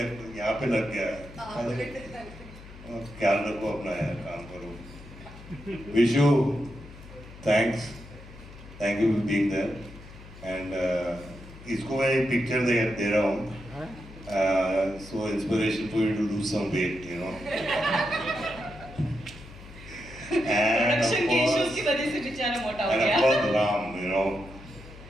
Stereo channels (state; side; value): noise; left; hum, 17 dB below the sound